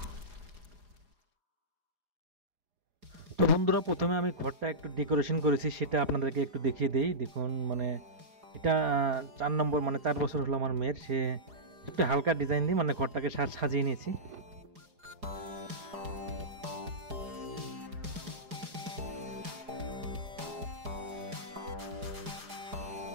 তো বন্ধুরা প্রথমে আমি ঘরটা একটু ডেকোরেশন করেছি, সেটা আপনাদেরকে একটু দেখিয়ে দেই। দেখুন মানে এটা 4 নম্বর, মানে 4 বছর হলো আমার মেয়ের। সে একটু হালকা ডিজাইন দিয়ে মানে ঘরটাকে সাজিয়ে নিয়েছি।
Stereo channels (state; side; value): late; left; 4.9 ms